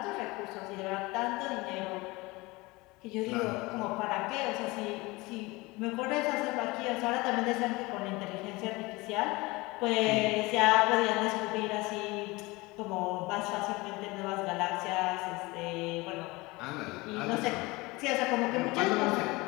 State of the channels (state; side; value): quieter; right; 22.9 dB